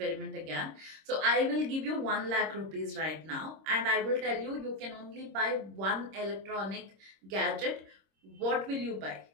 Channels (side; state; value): left; late; 26 ms